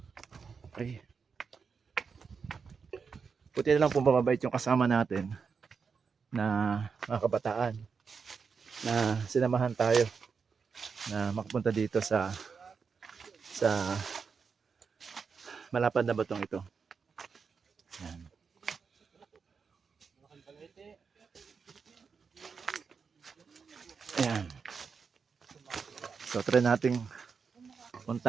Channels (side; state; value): left; quieter; 5.6 dB